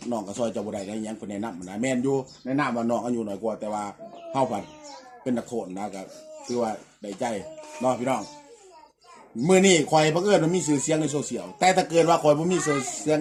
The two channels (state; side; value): identical; both; correlation 1.00